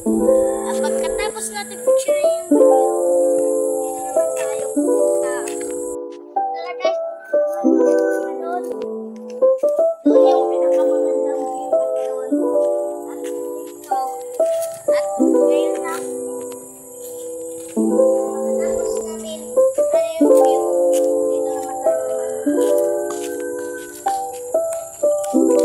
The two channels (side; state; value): both; identical; correlation 1.00